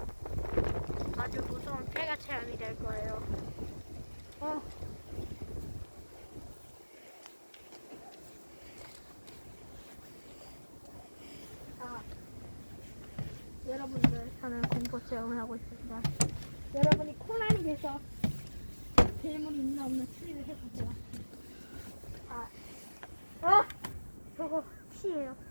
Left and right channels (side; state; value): both; inverted; correlation -1.00